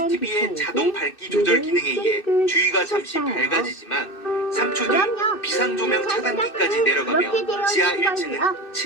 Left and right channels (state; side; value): late; right; 2.6 ms